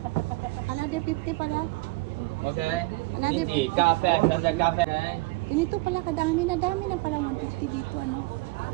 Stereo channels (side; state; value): left; quieter; 22.2 dB